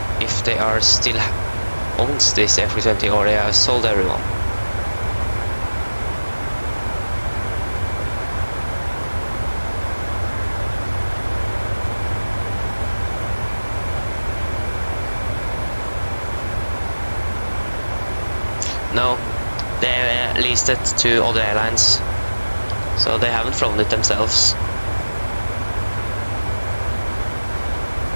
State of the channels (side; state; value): both; inverted; correlation -1.00